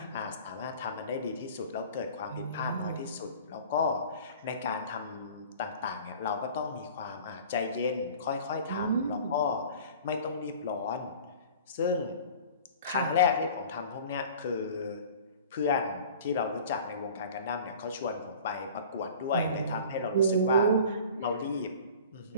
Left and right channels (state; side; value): inverted; both; correlation -0.43